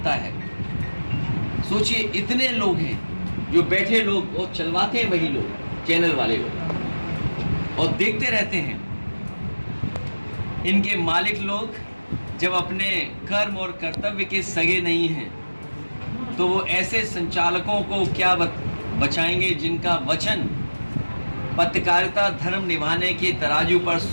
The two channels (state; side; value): inverted; both; correlation -1.00